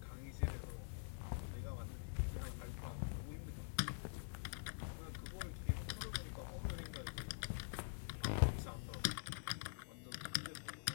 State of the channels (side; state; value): right; silent; digital silence